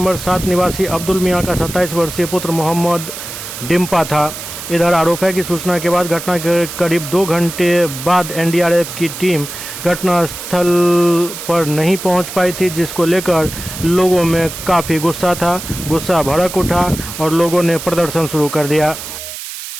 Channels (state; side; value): noise; right; hiss, 10 dB below the sound